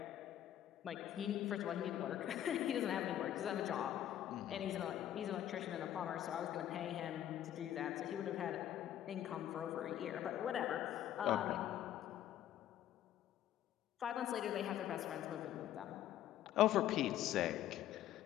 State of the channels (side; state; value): right; quieter; 11.7 dB